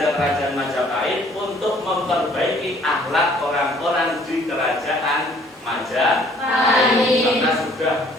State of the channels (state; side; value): normal; both; correlation 0.58